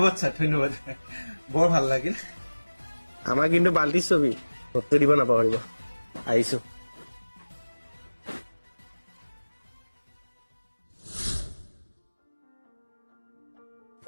ছাৰ, ধন্যবাদ। বৰ ভাল লাগিল। আমাৰ কিন্তু বাল্টিৰ ছবি, ভোটটো দিব নাপাহৰিব। আহিছো।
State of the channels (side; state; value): both; inverted; correlation -1.00